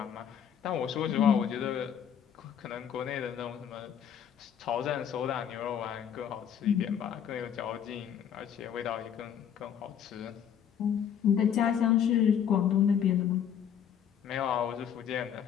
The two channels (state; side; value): quieter; right; 8.7 dB